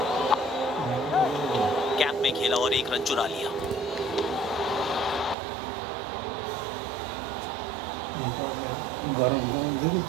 कैप में खेला और एक रन चुरा लिया।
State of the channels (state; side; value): drops out; left; at 5.4 s